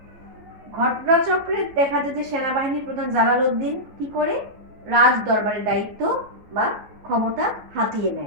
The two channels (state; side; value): late; left; 14 ms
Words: ঘটনাচক্রে দেখা যায় যে সেনাবাহিনীর প্রধান জালালউদ্দিন কি করে রাজ দরবারের দায়িত্ব বা ক্ষমতা হাতিয়ে